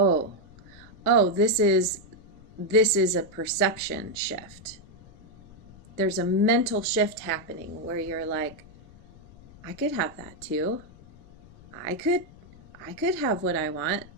this is a perception shift. There's a mental shift happening where you're like, I could have that too. I could have what I want.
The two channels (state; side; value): noise; left; rumble, 22 dB below the sound